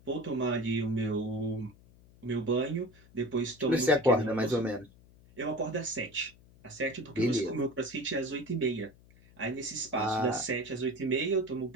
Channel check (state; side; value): noise; left; hum, 25 dB below the sound